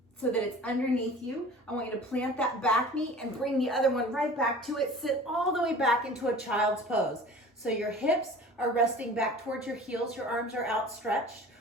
so that it's underneath you. I want you to plant that back knee and bring the other one right back to it. Sit all the way back into a child's pose. So your hips are resting back towards your heels, your arms are outstretched.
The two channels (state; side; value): normal; both; correlation 0.42